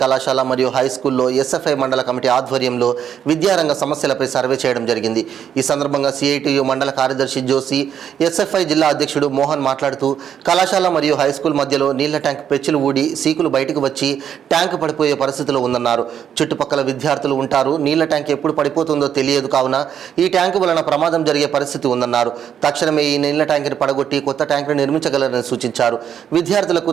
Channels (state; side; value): quieter; left; 8.9 dB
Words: కళాశాల మరియు హై స్కూల్లో ఎస్ఎఫ్ఐ మండల కమిటీ ఆధ్వర్యంలో విద్యారంగ సమస్యలపై సర్వే చేయడం జరిగింది. ఈ సందర్భంగా సిఐటియు మండల కార్యదర్శి జోసి, ఎస్ఎఫ్ఐ జిల్లా అధ్యక్షుడు మోహన్ మాట్లాడుతూ కళాశాల మరియు హై స్కూల్ మధ్యలో నీళ్ల ట్యాంక్ పెచ్చులు ఊడి సీకులు బయటకు వచ్చి ట్యాంకు పడిపోయే పరిస్థితిలో ఉందన్నారు. చుట్టుపక్కల విద్యార్థులు ఉంటారు. నీళ్ల ట్యాంక్ ఎప్పుడు పడిపోతుందో తెలియదు కావున ఈ ట్యాంకు వలన ప్రమాదం జరిగే పరిస్థితి ఉందన్నారు. తక్షణమే ఈ నీళ్ల ట్యాంకుని పడగొట్టి కొత్త ట్యాంకును నిర్మించగలరని సూచించారు. విద్యార్థులకు